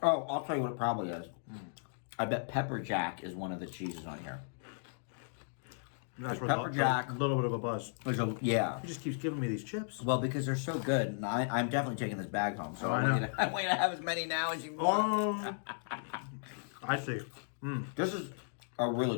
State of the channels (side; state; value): right; silent; digital silence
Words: I'll tell you what it probably is. I bet pepper jack is one of the cheeses on here. That's where pepper jack- a little bit of a buzz. Yeah. He just keeps giving me these chips. Well, because they're so good, and I'm definitely taking this bag home. So I I want, know. you to, I want you to have as many now as you want. I see. This is a